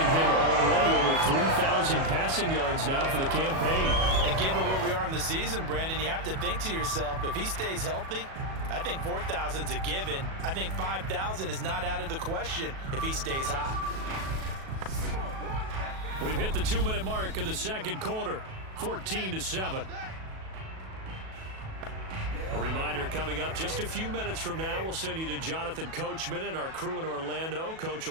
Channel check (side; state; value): left; late; 37 ms